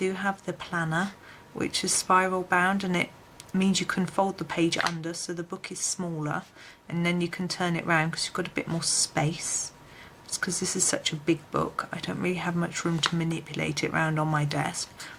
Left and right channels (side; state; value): both; identical; correlation 1.00